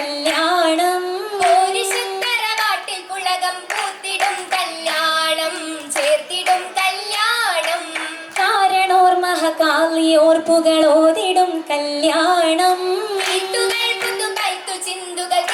കാരണോർ മഹകാളിയോർപ്പുകളോതിടും കല്യാണം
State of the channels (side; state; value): both; identical; correlation 1.00